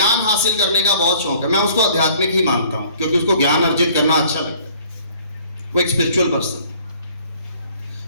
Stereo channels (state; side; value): inverted; both; correlation -0.55